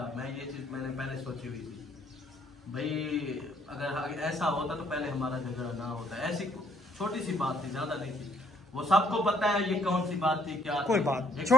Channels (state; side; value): normal; both; correlation 0.67